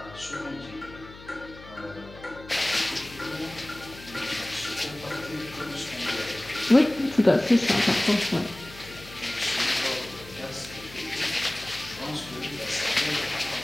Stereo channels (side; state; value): left; noise; hum, 17 dB below the sound